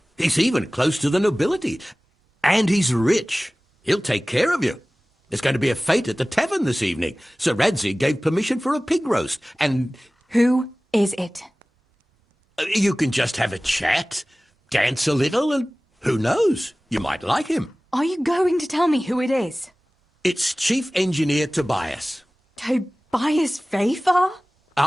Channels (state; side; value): normal; both; correlation 0.98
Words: He's even close to the nobility. And he's rich. He'll take care of you. There's going to be a fete at the tavern this evening. Sir Radzig gave permission for a pig roast, and... Who is it? You can just have a chat, dance a little, and who knows? You might like him. Are you going to tell me who it is? It's Chief Engineer Tobias. Tobias Fafar?